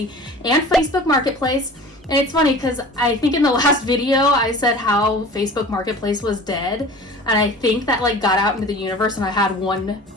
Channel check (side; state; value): both; normal; correlation 0.41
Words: and Facebook Marketplace. And it's funny because I think in the last video I said how Facebook Marketplace was dead, and I think that got out into the universe and I had one